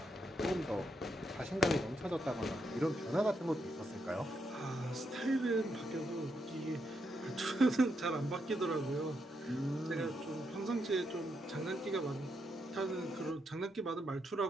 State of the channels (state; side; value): normal; both; correlation 0.80